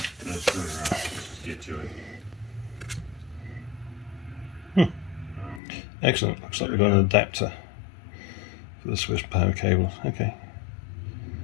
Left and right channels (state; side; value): drops out; right; at 5.6 s